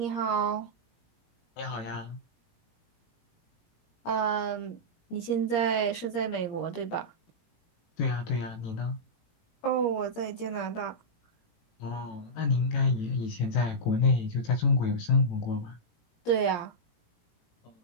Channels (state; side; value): late; right; 17 ms